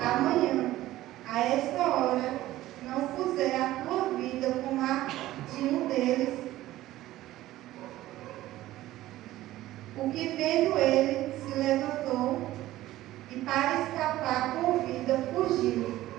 amanhã, a esta hora, não puser a tua vida como a de um deles, o que vendo ele se levantou e para escapar com vida fugiu,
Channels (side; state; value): left; quieter; 15.5 dB